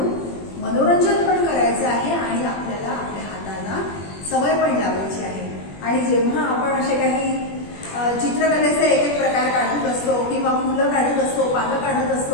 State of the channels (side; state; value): right; late; 21 ms